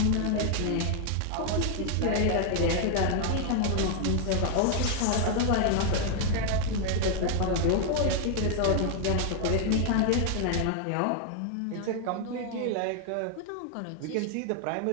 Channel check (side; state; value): both; different; correlation 0.00